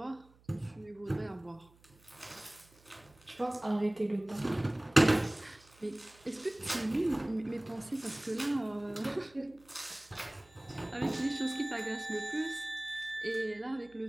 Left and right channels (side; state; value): right; noise; hum, 28 dB below the sound